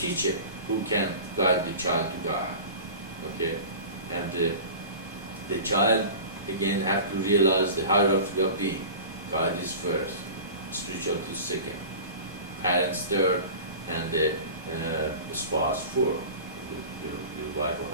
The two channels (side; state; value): both; inverted; correlation -0.36